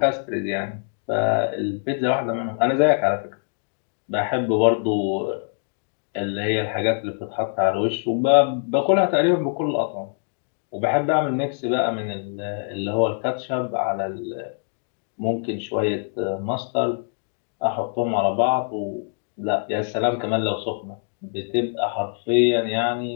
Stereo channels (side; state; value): right; silent; 63 dB below the other